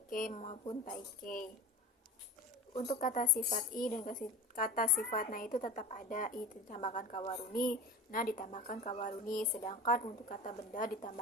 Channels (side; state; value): both; normal; correlation 0.33